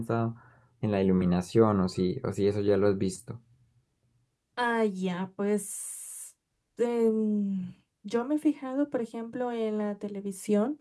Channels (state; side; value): identical; both; correlation 1.00